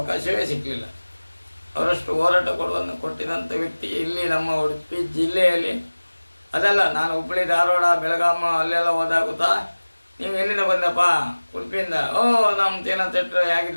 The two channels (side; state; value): both; inverted; correlation -1.00